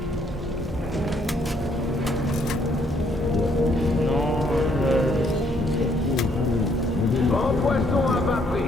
Non, Grand poisson à bas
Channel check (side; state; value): both; normal; correlation 0.69